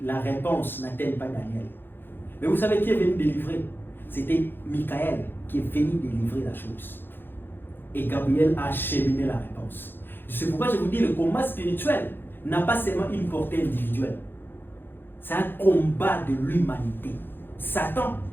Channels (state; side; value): late; right; 0.10 ms